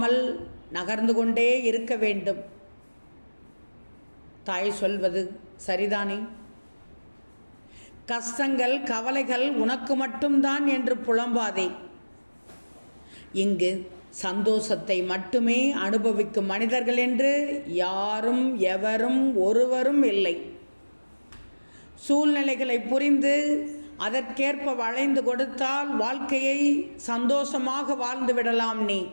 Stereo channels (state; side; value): inverted; both; correlation -1.00